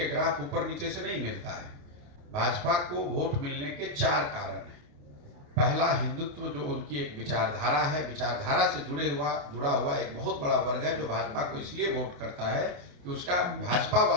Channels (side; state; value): left; late; 28 ms